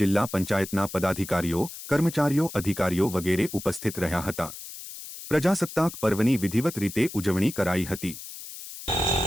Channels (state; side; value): noise; left; hiss, 12 dB below the sound